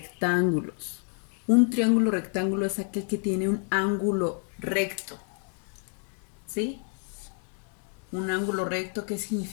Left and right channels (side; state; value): right; quieter; 39.6 dB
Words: Un triángulo rectángulo es aquel que tiene un ángulo recto. ¿Sí? Un ángulo recto, ¿qué